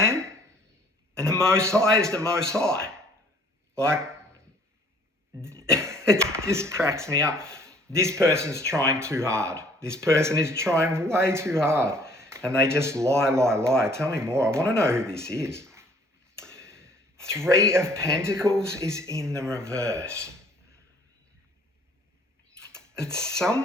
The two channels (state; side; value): normal; both; correlation 0.57